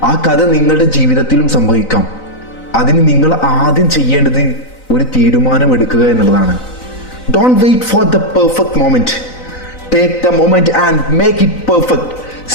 ആ കഥ നിങ്ങളുടെ ജീവിതത്തിലും സംഭവിക്കാം. അതിന് നിങ്ങൾ ആദ്യം ചെയ്യേണ്ടത് ഒരു തീരുമാനം എടുക്കുക എന്നുള്ളതാണ്. Don't wait for the perfect moment, take the moment and make it perfect.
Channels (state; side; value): late; right; 3.9 ms